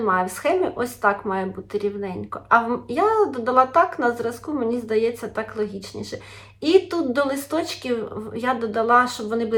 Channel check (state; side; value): identical; both; correlation 1.00